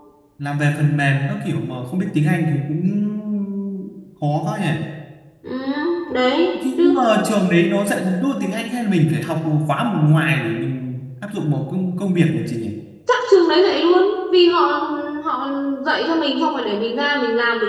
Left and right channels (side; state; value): both; identical; correlation 1.00